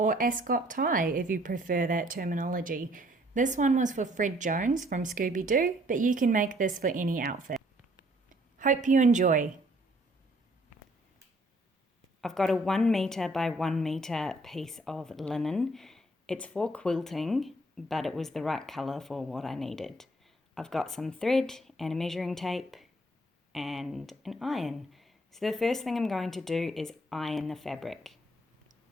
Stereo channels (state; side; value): normal; both; correlation 0.63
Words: Ascot tie if you prefer that terminology. This one was for Fred Jones from Scooby, but you can make this for any outfit. Hope you enjoy. I've got a 1 meter by 1 meter piece of linen. It's for quilting, but it was the right colour for what I needed. I've got some thread and a measuring tape and an iron. So the first thing I'm going to do is iron the fabric.